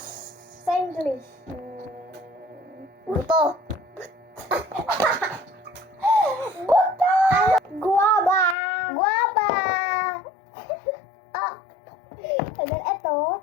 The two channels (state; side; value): drops out; right; at 8.6 s